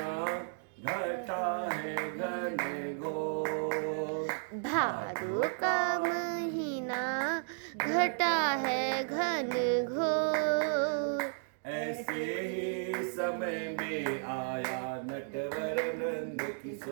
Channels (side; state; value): left; silent; digital silence